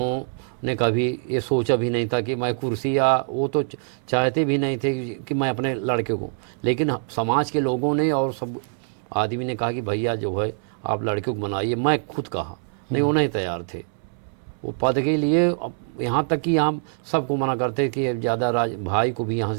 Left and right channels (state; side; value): silent; left; 63 dB below the other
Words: कभी ये सोचा भी नहीं था कि मैं कुर्सी, या वो तो चाहते भी नहीं थे कि मैं अपने लड़के को, लेकिन समाज के लोगों ने और सब आदमी ने कहा कि भैया जो है आप लड़के को बनाइए। मैं खुद कहा नहीं, वो नहीं तैयार थे वो पद के लिए। अब यहाँ तक कि हम सबको मना करते कि ज़्यादा भाई को भी यहाँ